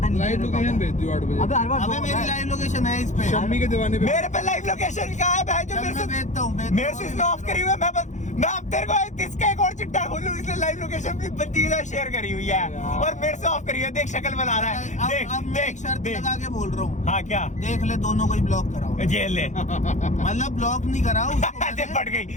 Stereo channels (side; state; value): right; late; 0.35 ms